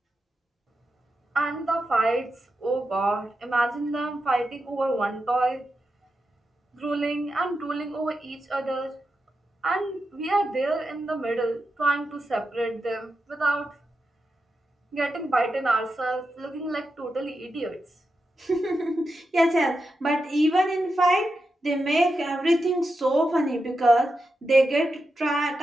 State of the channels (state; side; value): normal; both; correlation 0.88